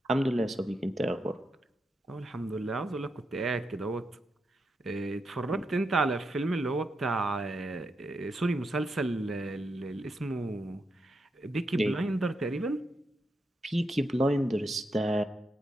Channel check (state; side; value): normal; both; correlation 0.84